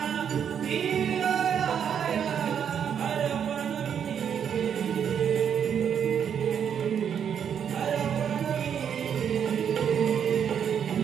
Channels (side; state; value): left; quieter; 8.2 dB